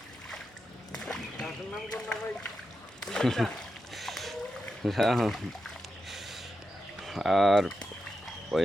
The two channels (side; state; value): both; normal; correlation 0.88